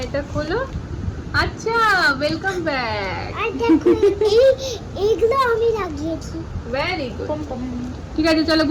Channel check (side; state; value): both; identical; correlation 1.00